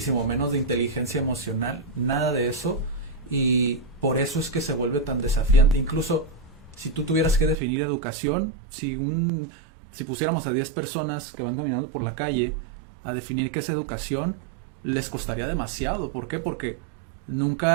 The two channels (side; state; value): left; drops out; at 7.6 s